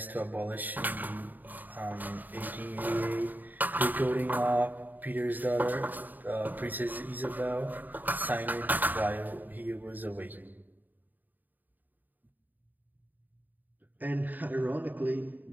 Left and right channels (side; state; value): left; late; 0.086 ms